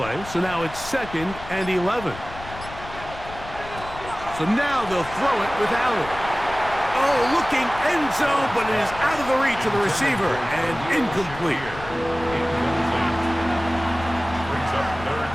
so now it's second and 11. So now they'll throw it with Allen. Oh, looking end zone, but it is out of the reach of the receiver and incomplete. Brings up third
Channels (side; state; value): left; noise; rumble, 14 dB below the sound